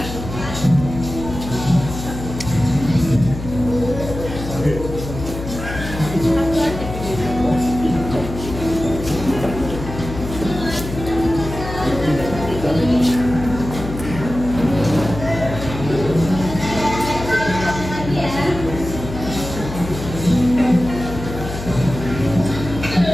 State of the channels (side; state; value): left; noise; hum, 8 dB below the sound